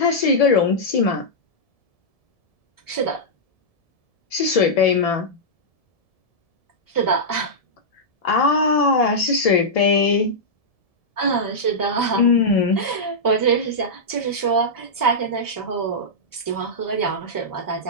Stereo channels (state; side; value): late; right; 1.7 ms